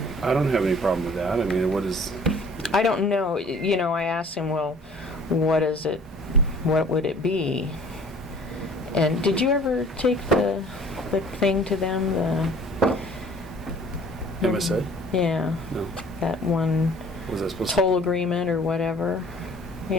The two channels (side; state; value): both; normal; correlation 0.51